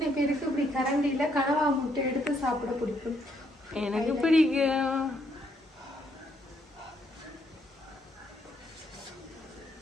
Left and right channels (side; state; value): both; normal; correlation 0.73